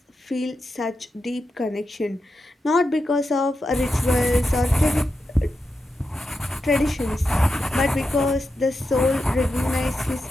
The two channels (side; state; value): both; normal; correlation 0.88